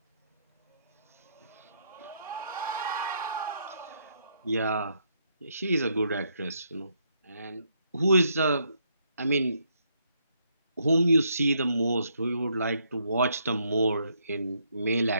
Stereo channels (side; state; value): both; inverted; correlation -0.74